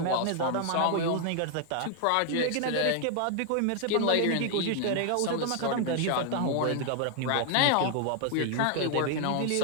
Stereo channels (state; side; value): different; both; correlation 0.00